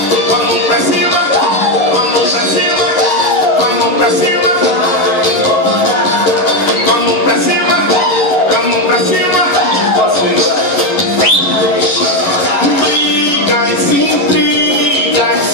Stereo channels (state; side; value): late; right; 11 ms